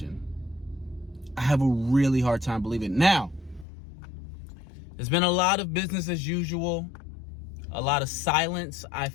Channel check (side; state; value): right; drops out; at 3.7 s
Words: I have a really hard time believing. Now, there's been a lot of business as usual, a lot of silence, I